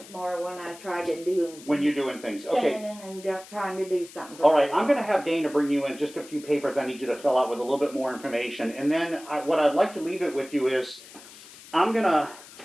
more when I try to do. When you're doing things. Okay. Standing and trying to do something. All right, I'm going to have Dana bring you in just a few papers I need you to fill out with a little bit more information. And then what I'd like to leave it with you is I'm going to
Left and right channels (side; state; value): left; noise; hiss, 19 dB below the sound